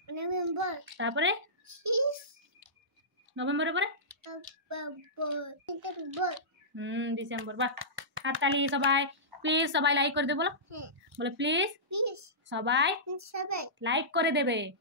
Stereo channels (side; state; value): both; normal; correlation -0.18